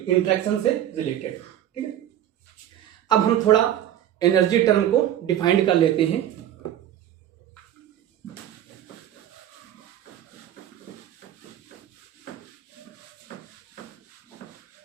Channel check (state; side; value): quieter; left; 11.4 dB